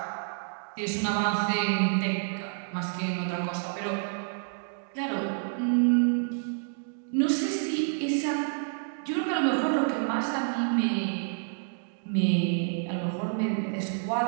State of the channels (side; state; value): left; silent; digital silence